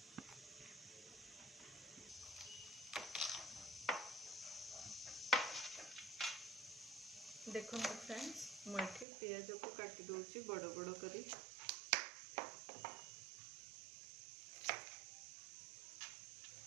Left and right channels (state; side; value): drops out; left; at 9.1 s